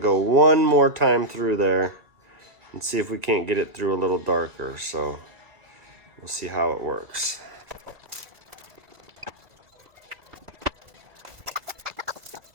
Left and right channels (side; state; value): left; late; 1.4 ms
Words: go one more time through there and see if we can't get it through a little darker. So we'll see how it works.